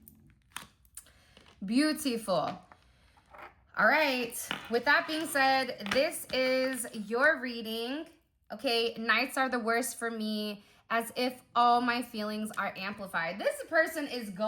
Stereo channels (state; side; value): identical; both; correlation 1.00